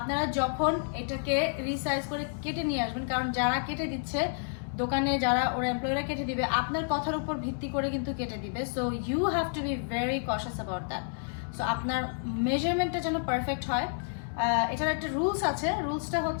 যখন এটাকে রিসাইজ করে কেটে নিয়ে আসবেন, কারণ যারা কেটে দিচ্ছে দোকানে, যারা ওরা এমপ্লয়িরা কেটে দিবে আপনার কথার উপর ভিত্তি করে কিন্তু কেটে দিবে। So you have to be very cautious about that. So আপনার মেজারমেন্টটা যেন পারফেক্ট হয়। এটার একটা রুলস আছে। রুলসটা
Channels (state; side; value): silent; right; 58 dB below the other